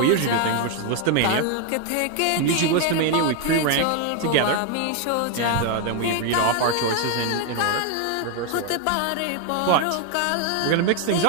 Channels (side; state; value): both; different; correlation 0.01